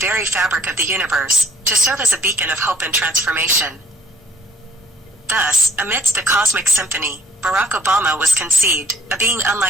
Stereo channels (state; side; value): normal; both; correlation 0.60